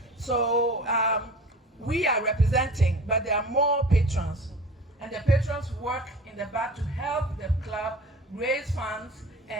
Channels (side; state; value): both; normal; correlation 0.39